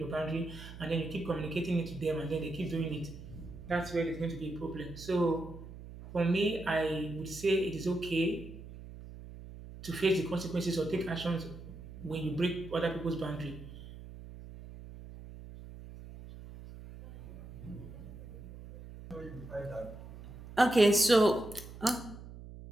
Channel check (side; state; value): right; noise; hum, 14 dB below the sound